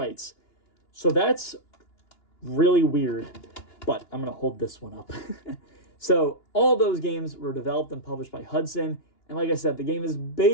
So that's really weird, but I'm going to hold this one up. So all those games were developed and published by Hudson, and like I said, the game is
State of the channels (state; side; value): late; right; 2.9 ms